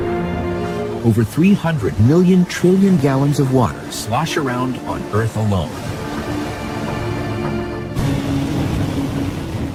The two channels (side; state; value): both; identical; correlation 1.00